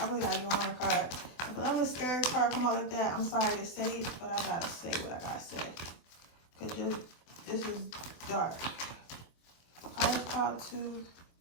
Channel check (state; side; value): late; right; 24 ms